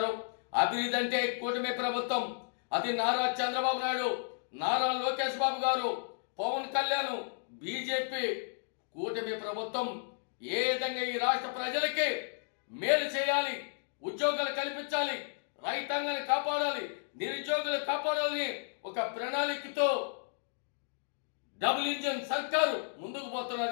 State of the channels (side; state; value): right; silent; digital silence